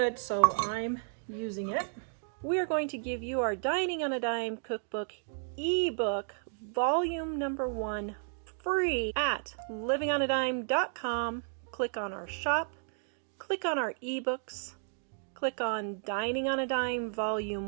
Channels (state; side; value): silent; left; digital silence